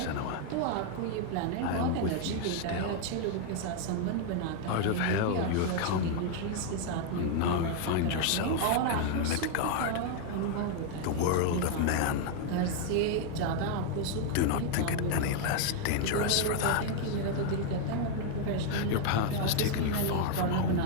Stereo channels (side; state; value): both; different; correlation 0.00